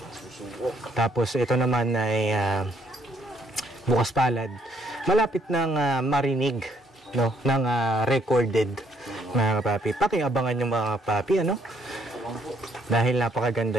Tapos ito naman ay Bukas Palad. Malapit ng marinig, no, ng recorded, mga kapapi. Pakiabangan yung mga kapapi, ano? Dahil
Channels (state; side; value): normal; both; correlation 0.68